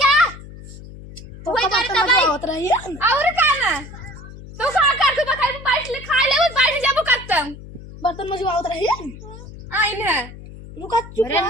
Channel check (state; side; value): noise; left; hum, 15 dB below the sound